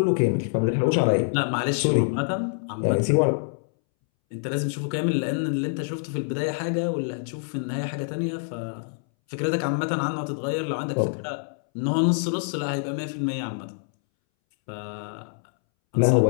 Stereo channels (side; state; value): right; silent; 61 dB below the other